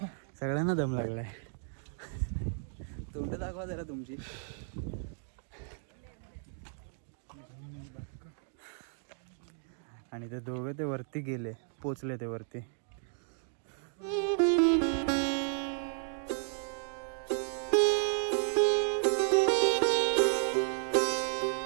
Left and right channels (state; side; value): silent; left; 55 dB below the other